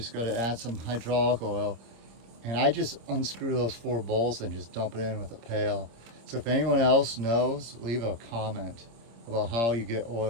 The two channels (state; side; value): late; left; 26 ms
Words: got to add some hydraulic oil. And I just unscrew those 4 bolts and just dump it in with a pail. So if anyone else knows, leave a comment about how you get